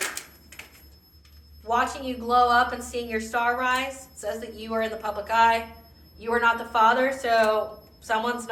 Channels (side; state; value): both; identical; correlation 1.00